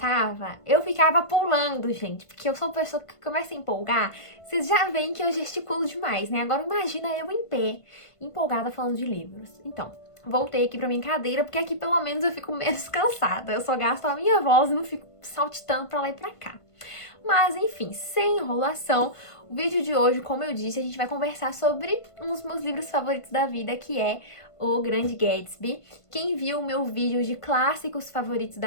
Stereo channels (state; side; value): late; right; 1.5 ms